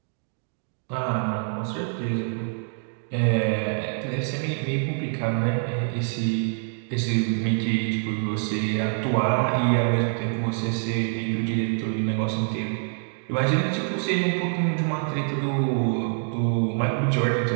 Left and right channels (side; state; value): left; silent; 61 dB below the other